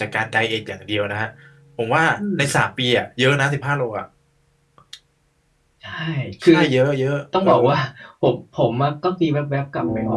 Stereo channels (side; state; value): both; identical; correlation 1.00